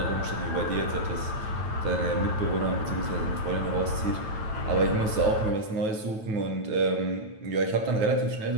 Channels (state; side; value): late; left; 9.2 ms